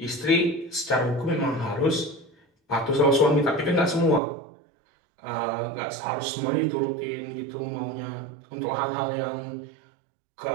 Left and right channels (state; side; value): drops out; left; at 4.2 s